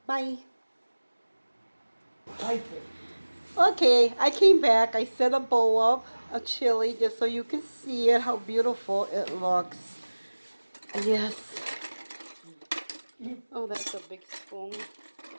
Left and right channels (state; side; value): inverted; both; correlation -1.00